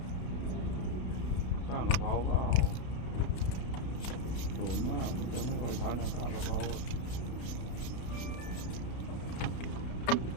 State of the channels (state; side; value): late; right; 32 ms